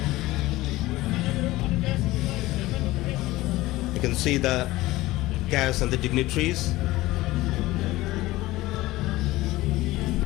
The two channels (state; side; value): quieter; right; 18.2 dB